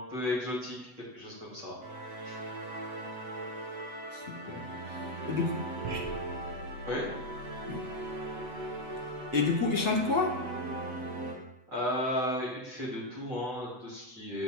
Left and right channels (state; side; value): late; left; 8.0 ms